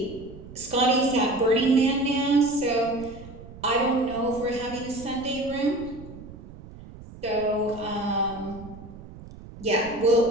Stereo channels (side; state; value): right; noise; rumble, 16 dB below the sound